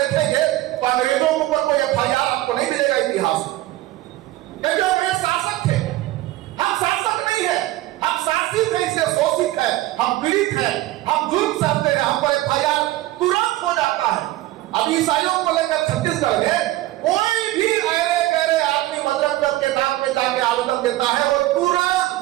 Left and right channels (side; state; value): left; quieter; 16.8 dB